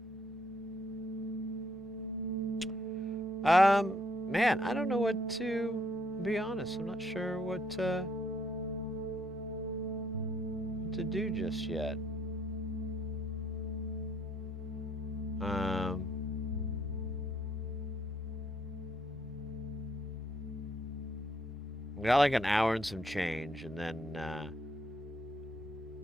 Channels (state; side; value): normal; both; correlation 0.69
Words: Man, I don't know what to be honest. I'm not sure what to do just yet. We got like an hour and some change, and then